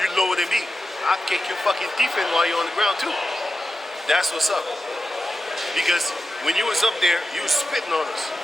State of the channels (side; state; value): both; normal; correlation 0.91